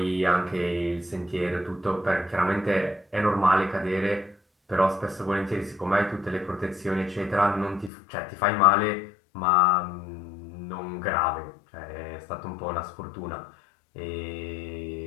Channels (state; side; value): drops out; right; at 7.9 s